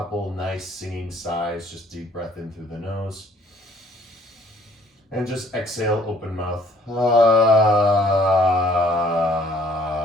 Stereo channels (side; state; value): both; normal; correlation 0.58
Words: nice singing sighs. Just deep breath in through the nose. And just exhale, open mouth.